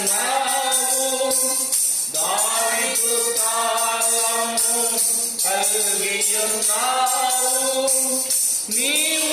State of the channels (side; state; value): both; identical; correlation 1.00